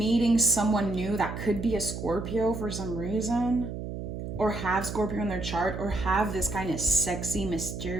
someone new that could be a Scorpio for some reason, or have Scorpio in their chart, or have this kind of sexy,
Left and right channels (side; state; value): right; noise; hum, 7 dB below the sound